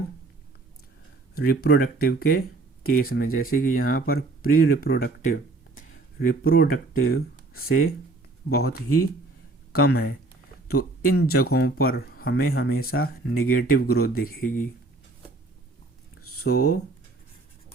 रिप्रोडक्टिव के केस में, जैसे कि यहाँ पर प्री रिप्रोडक्टिव रिप्रोडक्टिव से बहुत ही कम है, तो इन जगहों पर हमें हमेशा नेगेटिव ग्रोथ दिखेगी। सो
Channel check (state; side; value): quieter; left; 3.3 dB